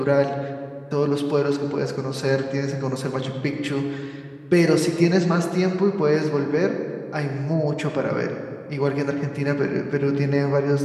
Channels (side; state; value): both; identical; correlation 1.00